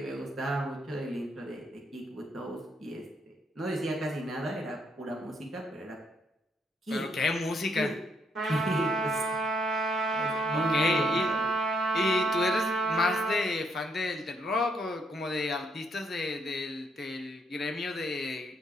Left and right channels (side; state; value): both; normal; correlation 0.74